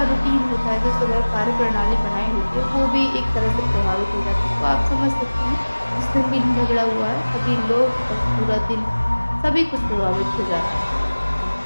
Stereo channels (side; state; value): both; inverted; correlation -1.00